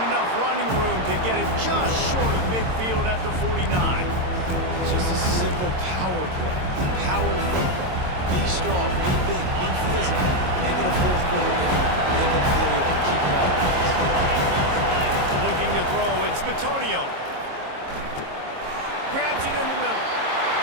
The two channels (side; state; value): left; late; 22 ms